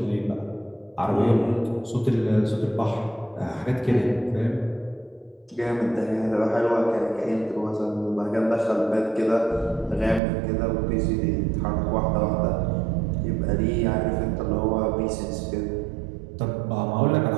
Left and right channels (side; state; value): left; drops out; at 10.2 s